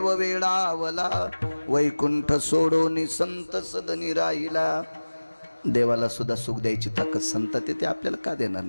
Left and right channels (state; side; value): inverted; both; correlation -1.00